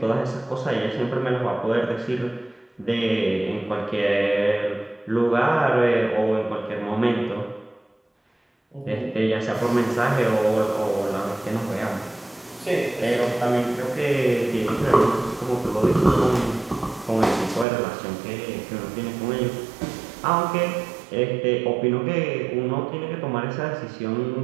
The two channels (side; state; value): left; drops out; at 17.7 s